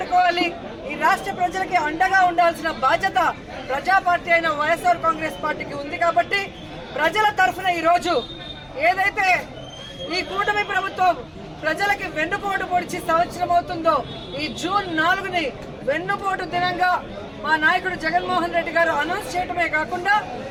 ఈ రాష్ట్ర ప్రజలకి అండగా ఉండాల్సిన బాధ్యత ప్రజా పార్టీ అయిన వైఎస్ఆర్ కాంగ్రెస్ పార్టీకి ఉంది. కాబట్టి ప్రజల తరఫున ఈరోజు ఏదైతే ఈ కూటమి ప్రభుత్వం ప్రజలకి వెన్నుపోటు పొడిచి సంవత్సరం అవుతుందో ఈ జూన్ 4ని వెన్నుపోటు దినంగా మా నాయకుడు జగన్మోహన్ రెడ్డి గారు అనౌన్స్ చేయడమే కాకుండా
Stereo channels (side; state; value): both; identical; correlation 1.00